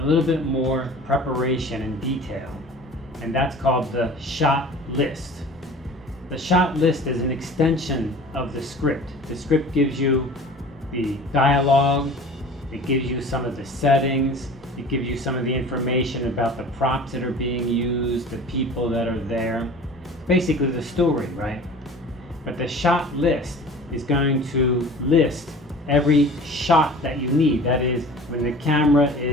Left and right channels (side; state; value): both; normal; correlation 0.42